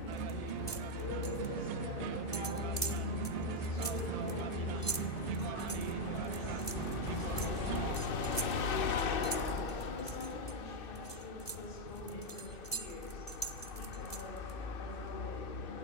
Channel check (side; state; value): right; late; 2.0 ms